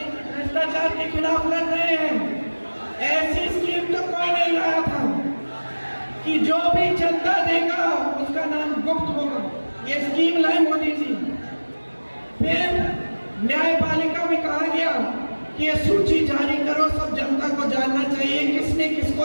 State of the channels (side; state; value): both; inverted; correlation -1.00